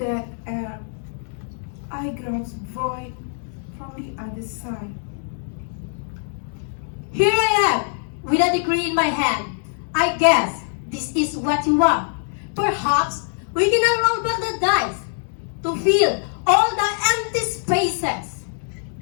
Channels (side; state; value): right; silent; digital silence